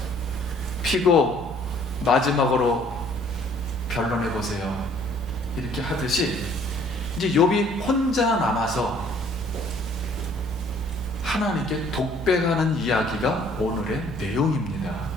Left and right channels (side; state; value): both; normal; correlation 0.58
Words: 피고 마지막으로 변론해 보세요 이렇게 하듯이 이제 욥이 혼자 남아서 하나님께 독백하는 이야기가 오늘의 내용입니다.